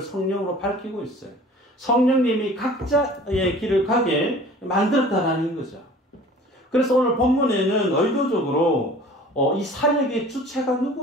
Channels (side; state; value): both; normal; correlation 0.46